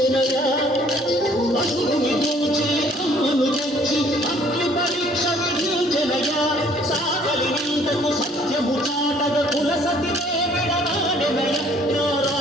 అసురుని దోచి అమ్మను తెచ్చి అగ్ని పరీక్ష విధించెనయా సాగలి నిందకు సత్యము చాటగ కుల సతినే విడనాడెనయ నా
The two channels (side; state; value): both; normal; correlation 0.59